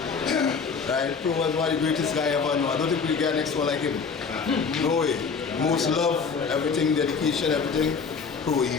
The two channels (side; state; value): right; quieter; 5.5 dB